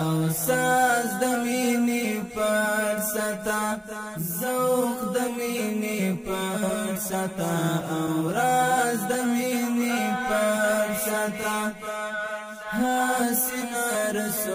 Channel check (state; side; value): identical; both; correlation 1.00